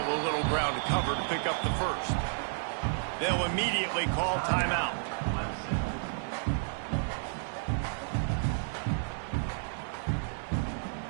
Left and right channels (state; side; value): silent; left; digital silence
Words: a little ground to cover to pick up the first. They'll immediately call timeout.